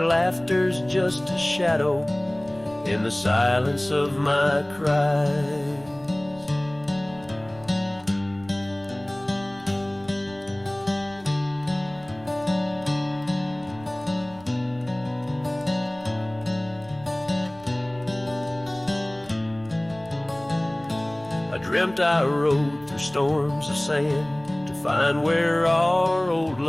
laughter's just a shadow in the silence of my cries. Dreamt I rode through storms of sand to find where our old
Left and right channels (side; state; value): right; noise; rumble, 25 dB below the sound